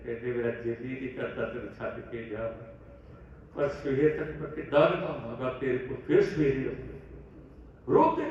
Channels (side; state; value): both; identical; correlation 1.00